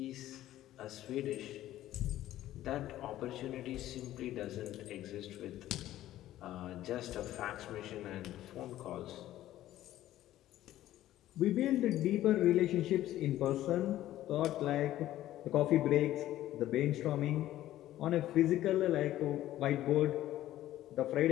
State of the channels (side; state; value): right; quieter; 13.8 dB